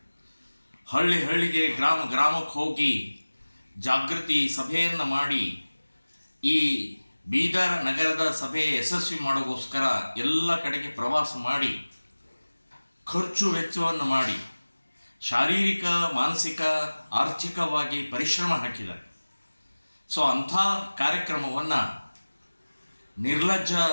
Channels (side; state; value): both; inverted; correlation -1.00